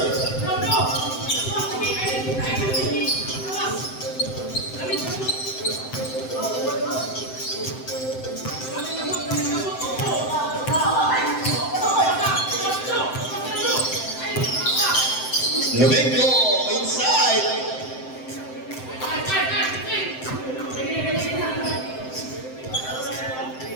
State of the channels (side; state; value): right; late; 7.8 ms